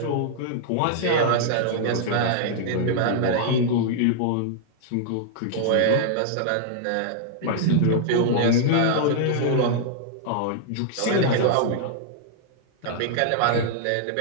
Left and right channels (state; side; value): different; both; correlation -0.01